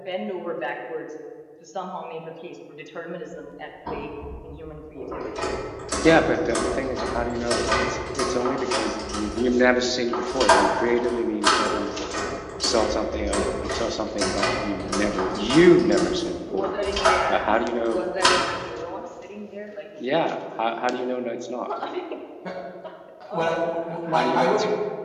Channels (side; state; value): both; identical; correlation 1.00